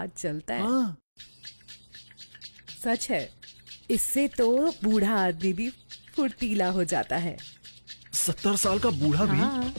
चलता है। सच है, इससे तो बूढ़ा आदमी भी फुर्तीला हो जाता है। 70 साल का बूढ़ा भी? हाँ,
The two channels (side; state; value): both; inverted; correlation -1.00